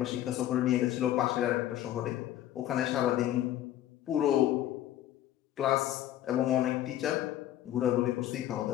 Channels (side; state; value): right; quieter; 12.7 dB